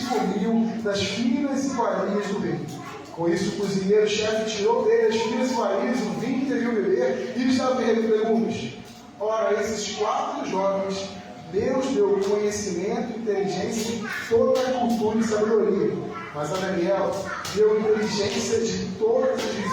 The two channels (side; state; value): both; identical; correlation 1.00